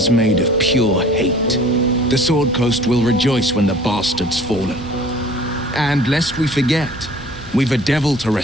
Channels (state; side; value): normal; both; correlation 0.49